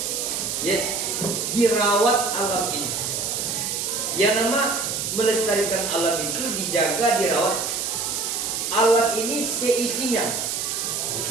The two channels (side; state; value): right; noise; hiss, 2 dB below the sound